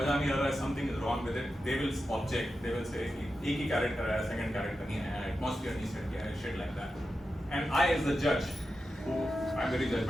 नहीं आ रहा है, something is wrong with it, they will object. They will say कि एक ही कैरेक्टर है, सेकंड कैरेक्टर नहीं है, एटमॉस्फेयर नहीं सेट किया है, shit like that. And I as the judge, who I'm very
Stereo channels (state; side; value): normal; both; correlation 0.91